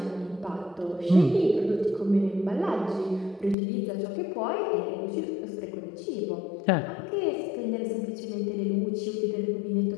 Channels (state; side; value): drops out; right; at 3.6 s